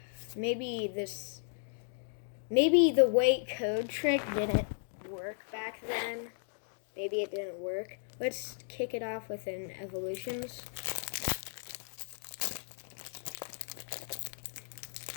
the weight code trick didn't work back then. Maybe it didn't work. Let's kick it off with an evolutions.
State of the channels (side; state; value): right; silent; digital silence